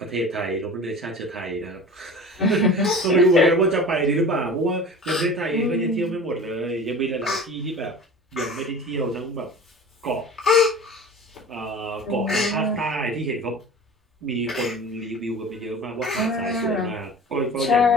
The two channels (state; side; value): normal; both; correlation 0.38